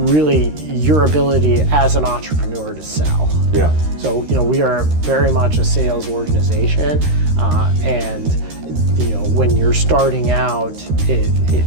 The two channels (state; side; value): late; left; 13 ms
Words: your ability as an entrepreneur to sell. Yeah. So we are very much a sales organization, and when you're starting out,